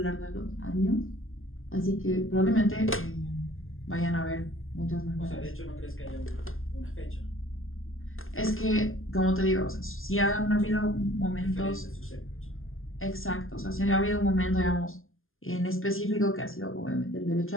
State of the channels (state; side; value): late; right; 0.60 ms